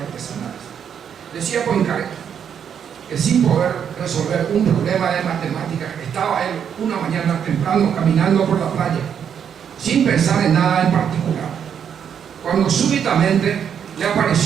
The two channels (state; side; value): quieter; left; 8.1 dB